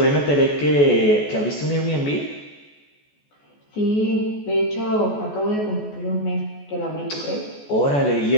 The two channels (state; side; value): late; right; 14 ms